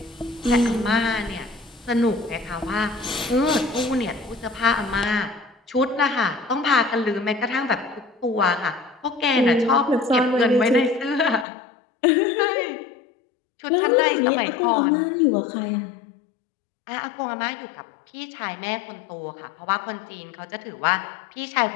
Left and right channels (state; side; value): drops out; right; at 11.5 s